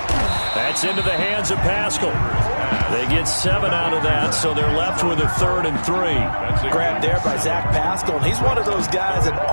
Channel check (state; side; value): inverted; both; correlation -1.00